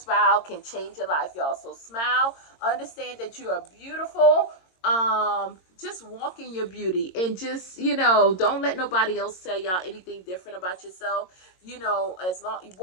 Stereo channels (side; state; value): right; late; 22 ms